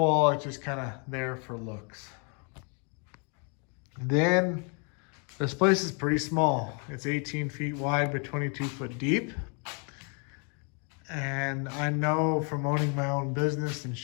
It's just kind of there for looks. Then this place is pretty small. It's 18 feet wide but 22 foot deep. And I know from owning my own business and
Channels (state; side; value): quieter; right; 37.9 dB